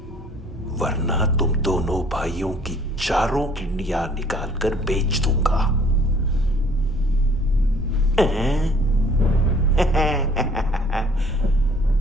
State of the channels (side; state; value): both; normal; correlation 0.56